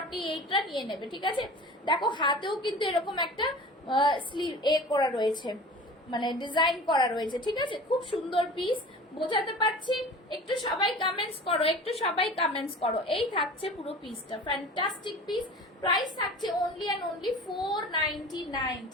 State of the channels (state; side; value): normal; both; correlation 0.39